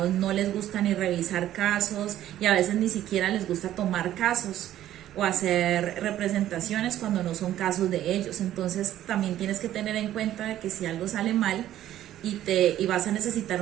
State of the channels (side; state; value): left; quieter; 12.6 dB